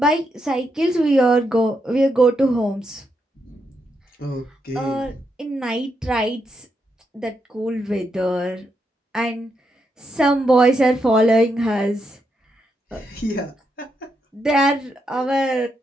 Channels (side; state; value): both; normal; correlation 0.81